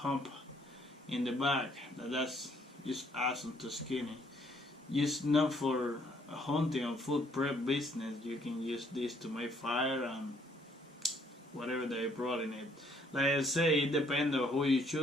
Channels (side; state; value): both; normal; correlation 0.65